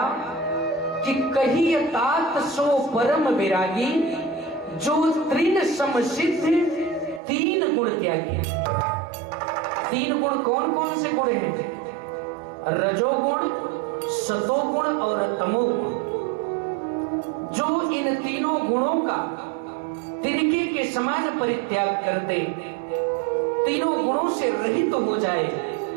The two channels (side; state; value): left; drops out; at 7.2 s